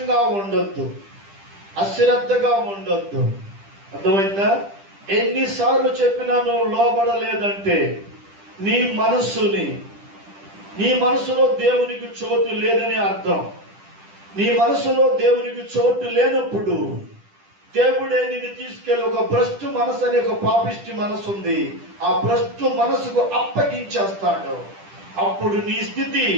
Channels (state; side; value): late; left; 10 ms